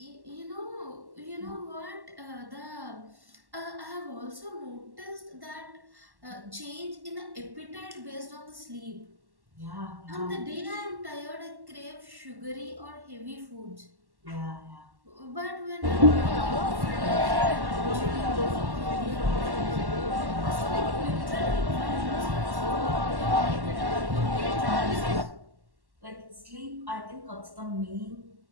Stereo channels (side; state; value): left; late; 1.1 ms